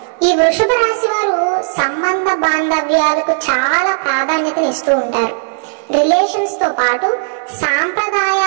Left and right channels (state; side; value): silent; left; digital silence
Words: ఈ వృషభ రాశి వారు సంబంధ బాంధవ్యాలకు చాలా ప్రాధాన్యతను ఇస్తూ ఉంటారు. రిలేషన్స్ తో పాటు